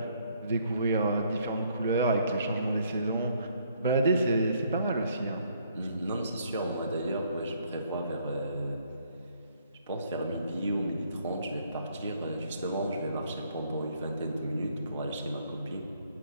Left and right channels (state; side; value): inverted; both; correlation -0.67